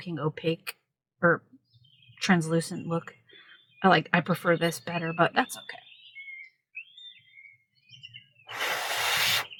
opaque or translucent look. I prefer this better, but that's okay.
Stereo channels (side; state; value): both; identical; correlation 1.00